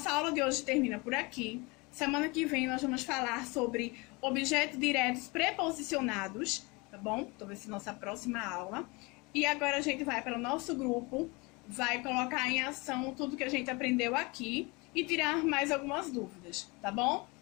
aula de hoje termina por aqui. Semana que vem nós vamos falar sobre objetos diretos preposicionados, tá bom? Então, vai ser nossa próxima aula. E agora a gente vai para o nosso grupo, vai colocar em ação tudo que a gente aprendeu aqui e tirar mais algumas dúvidas, tá bom?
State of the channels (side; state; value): right; quieter; 26.6 dB